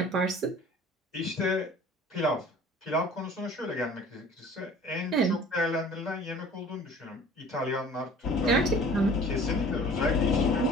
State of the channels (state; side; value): normal; both; correlation 0.48